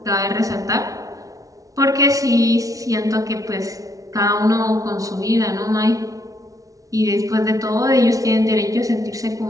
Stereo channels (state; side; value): late; left; 0.17 ms